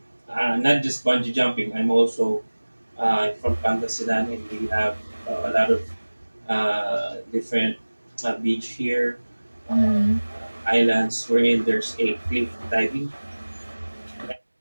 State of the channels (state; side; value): inverted; both; correlation -1.00